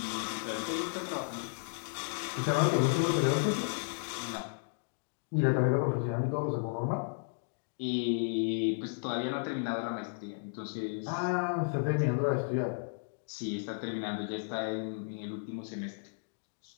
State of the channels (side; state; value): right; silent; digital silence